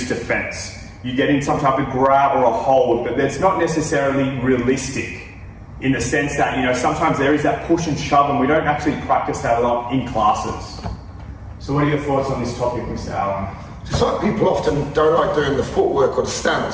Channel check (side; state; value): both; identical; correlation 1.00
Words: defense. You get in some type of grab or a hold, but that's not necessarily realistic in the sense that, sometimes there is that push and shove and we don't actually practice that a lot in classes. So what are your thoughts on this topic, Mr. Allen? It's like people often don't like doing the footwork or the